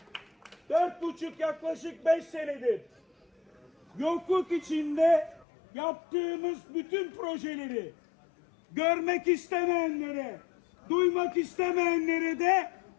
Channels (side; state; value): right; drops out; at 5.5 s